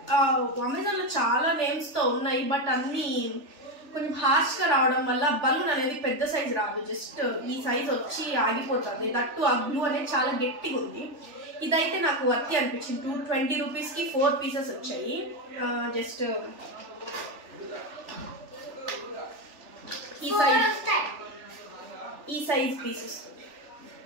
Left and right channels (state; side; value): late; left; 3.4 ms